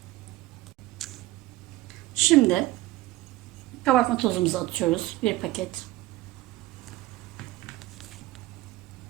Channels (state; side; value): quieter; left; 17.3 dB